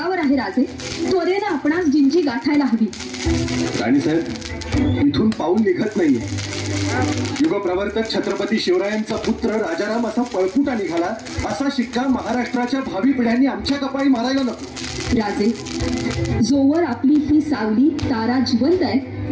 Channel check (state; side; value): identical; both; correlation 1.00